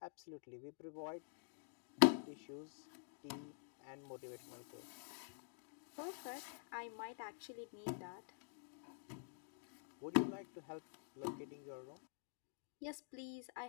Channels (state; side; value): silent; right; digital silence